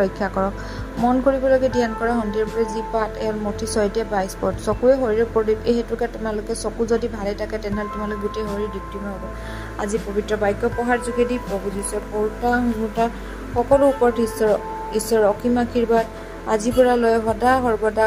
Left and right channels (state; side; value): identical; both; correlation 1.00